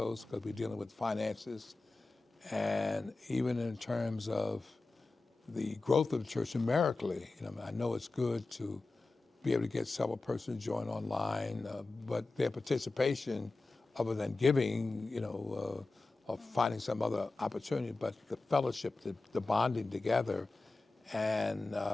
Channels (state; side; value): quieter; right; 3.4 dB